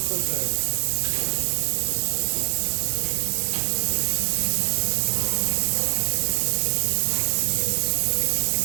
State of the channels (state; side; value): silent; left; digital silence